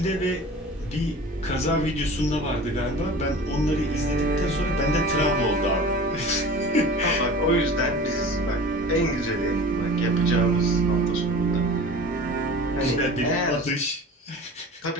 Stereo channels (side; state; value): both; normal; correlation 0.39